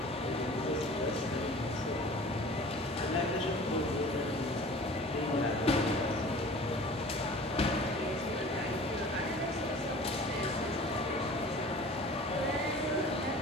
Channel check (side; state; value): both; normal; correlation 0.44